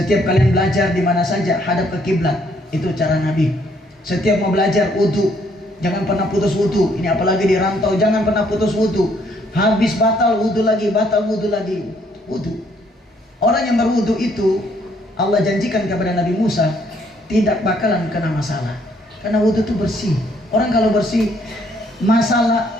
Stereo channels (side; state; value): both; normal; correlation 0.67